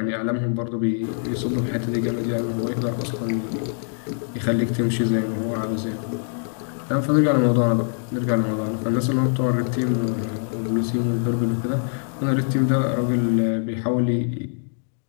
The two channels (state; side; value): silent; right; 63 dB below the other